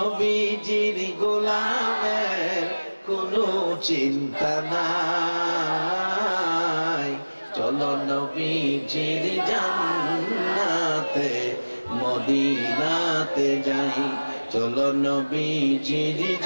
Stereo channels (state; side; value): inverted; both; correlation -1.00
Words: গোলামের কোনো চিন্তা নাই। চলো নবীজির জান্নাতে মদিনাতে যাই, চলো নবীজির